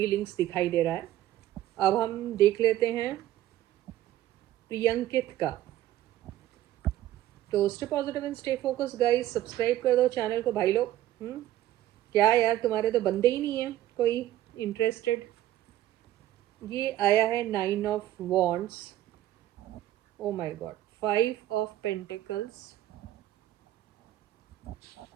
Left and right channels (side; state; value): left; quieter; 13.8 dB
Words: दिखाई दे रहा है। अब हम देख लेते हैं प्रियंकित का। तो stay positive and stay focus guys, subscribe कर दो चैनल को भाई लोग। क्या यार, तुम्हारे तो बंदे ही नहीं है कोई इंटरेस्टेड। ये आया है 9 of wands, oh my God, 5 of pentacles,